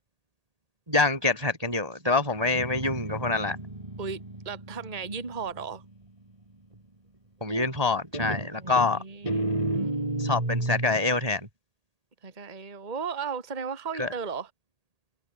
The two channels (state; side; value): late; left; 1.8 ms